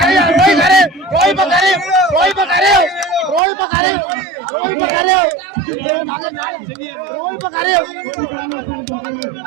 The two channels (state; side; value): drops out; left; at 3.4 s